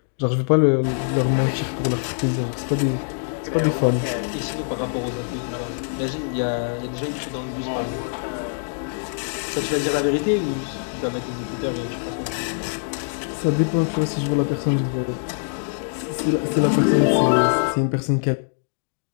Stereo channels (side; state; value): right; silent; digital silence